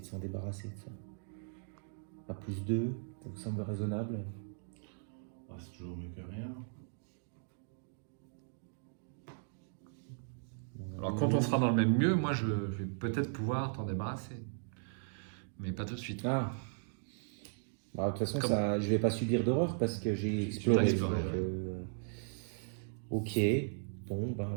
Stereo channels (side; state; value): left; silent; digital silence